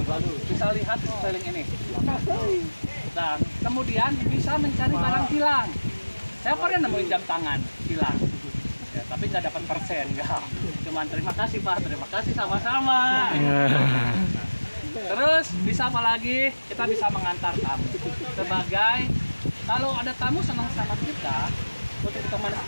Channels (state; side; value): inverted; both; correlation -1.00